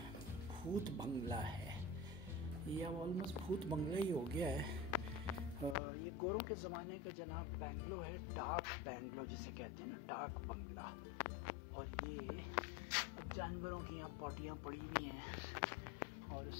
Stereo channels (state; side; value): drops out; right; at 5.8 s